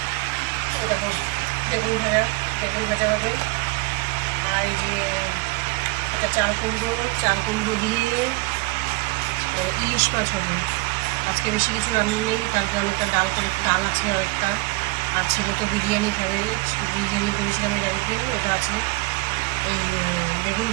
দেখো বেগুন ভাজা হবে। আর এই যে এটা চাল কুমড়ো দিয়ে ইলিশ মাছ হবে। আজকে বেশি কিছু রান্না নেই, তারপর অনেকটা ডাল আছে অনেকটা। আর ছেলে তো বিরিয়ানি খাবে, বিরিয়ানি করেছিলাম এর আগের দিন, ওটা আছে। এই বেগুন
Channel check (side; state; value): left; quieter; 26.4 dB